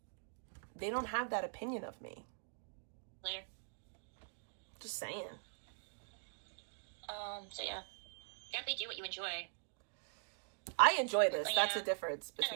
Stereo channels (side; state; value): left; silent; digital silence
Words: they don't have that opinion of me. Later. Just saying. So yeah. Definitely do what you enjoy. I enjoy this. Yeah. That's the difference